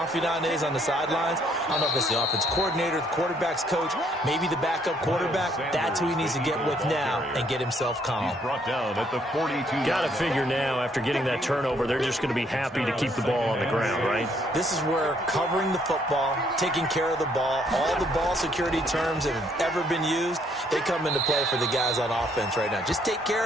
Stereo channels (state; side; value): normal; both; correlation 0.68